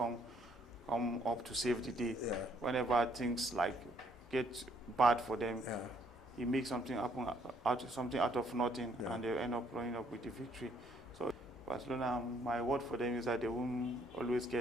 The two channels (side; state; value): both; normal; correlation 0.67